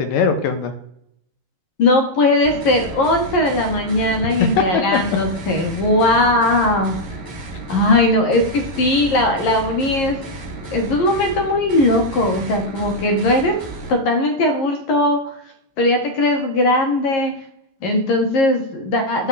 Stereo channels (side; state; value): right; late; 11 ms